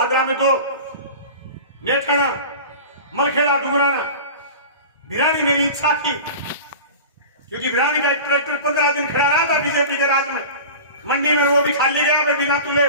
में तो, नेठाना, मलखेड़ा, डुमराना। भिरानी मेरी इच्छा थी क्योंकि भिरानी का एक ट्रैक्टर 15 दिन खड़ा रहा था बीजेपी के राज में, मंडी में वो भी खाली गया, फिर बिना तुले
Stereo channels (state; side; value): inverted; both; correlation -0.34